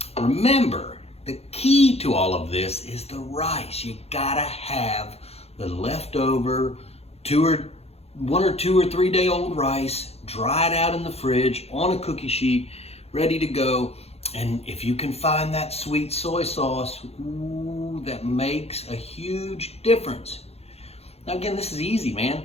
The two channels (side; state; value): right; late; 0.30 ms